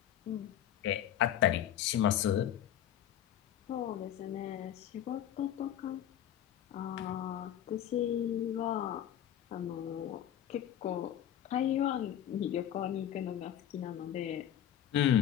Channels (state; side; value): quieter; right; 10.8 dB